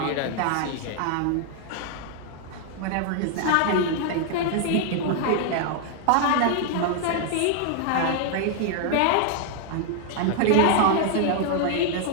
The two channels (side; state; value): both; different; correlation 0.00